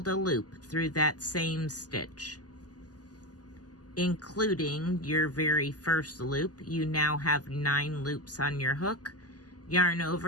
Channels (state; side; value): late; right; 0.68 ms